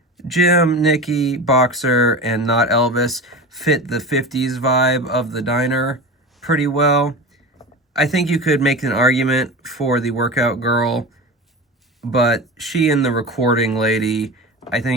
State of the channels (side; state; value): both; normal; correlation 0.29